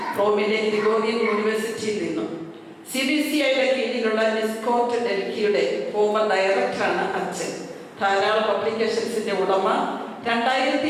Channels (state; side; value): identical; both; correlation 1.00